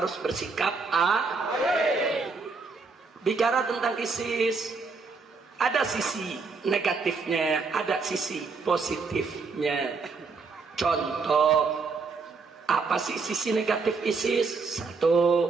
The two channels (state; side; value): quieter; left; 4.5 dB